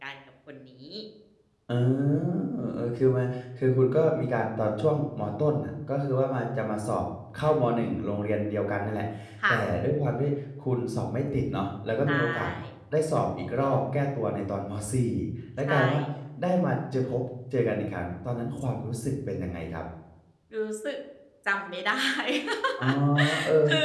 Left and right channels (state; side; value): identical; both; correlation 1.00